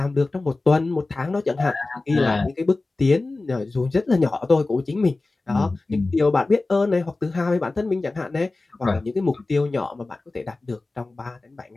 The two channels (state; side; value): quieter; right; 3.3 dB